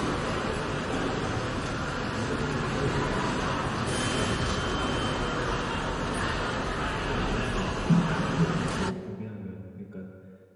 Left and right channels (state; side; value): identical; both; correlation 1.00